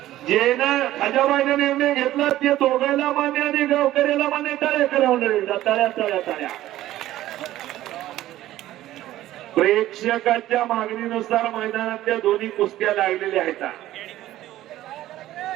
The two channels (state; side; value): quieter; left; 14.5 dB